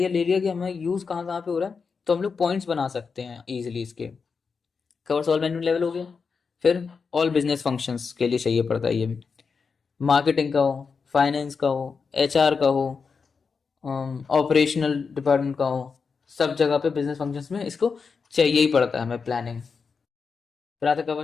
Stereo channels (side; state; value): right; quieter; 5.3 dB